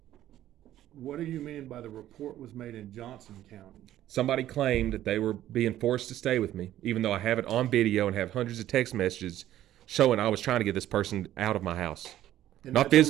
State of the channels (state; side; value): quieter; left; 12.9 dB